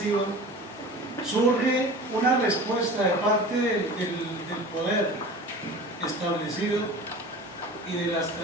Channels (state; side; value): normal; both; correlation 0.38